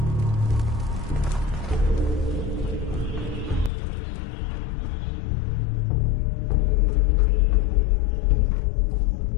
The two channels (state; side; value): drops out; right; at 3.7 s